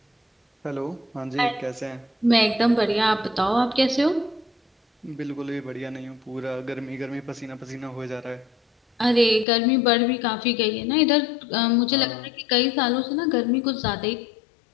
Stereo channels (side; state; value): right; drops out; at 9.5 s